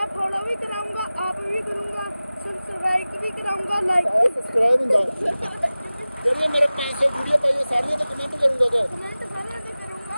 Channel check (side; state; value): both; inverted; correlation -0.97